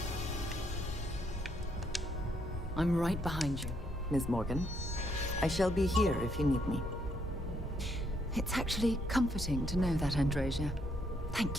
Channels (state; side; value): normal; both; correlation 0.73